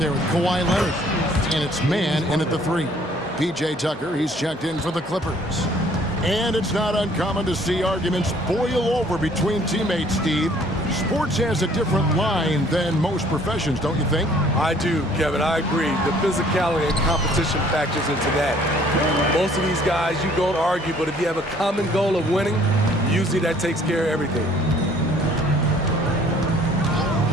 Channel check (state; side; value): normal; both; correlation 0.58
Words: with Kawhi Leonard. And it's man in at the 3. P.J. Tucker, he's checked in for the Clippers. And it's not uncommon to see arguments boil over between teammates, Steve. Sports has a different line than most professions, don't you think? I do, Kevin. I agree. The physicality and competition factors into that. Most of these guys, you don't argue, but if you have a common goal of winning, usually that takes care of everything.